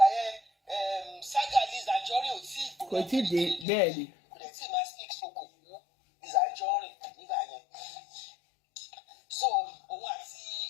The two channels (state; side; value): drops out; right; at 3.7 s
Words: yẹn saga Lizzy Anjorin ò tí ì kò tí ì dé bẹ́ẹ̀ni. kò dẹ̀ tí ì máa speak soko fún Lizzy Anjorin nígbà yẹn so òun àti